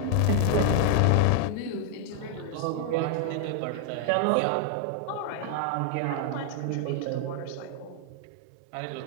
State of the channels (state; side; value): different; both; correlation 0.00